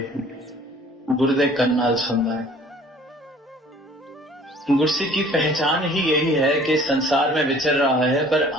गुरदे कन नाल सुनदा है। गुरसिक की पहचान ही यही है कि संसार में विचर रहा है पर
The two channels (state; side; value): normal; both; correlation 0.52